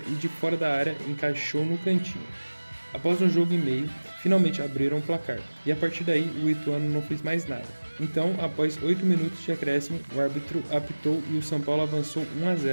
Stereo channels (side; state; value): both; inverted; correlation -1.00